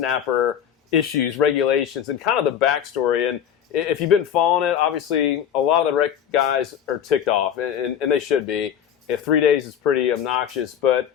issues, regulations, and kind of the backstory. And if you've been following it, obviously a lot of the rec guys are ticked off, and they should be. If 3 days is pretty obnoxious, but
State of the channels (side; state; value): right; quieter; 9.2 dB